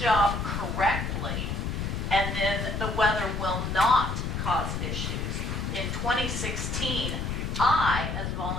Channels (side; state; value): left; noise; rumble, 2 dB below the sound